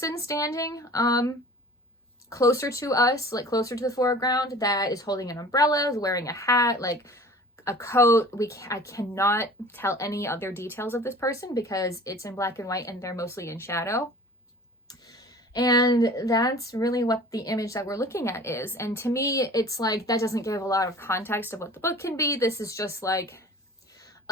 standing closer to us, like closer to the foreground, that is holding an umbrella, is wearing a hat, like a coat. I cannot tell any other details of this person because it's in black and white and they're mostly in shadow. And that's really what the image that we're looking at is. And to me, it's like, that doesn't give a lot of context of what the book can be. This is just like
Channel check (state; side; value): normal; both; correlation 0.44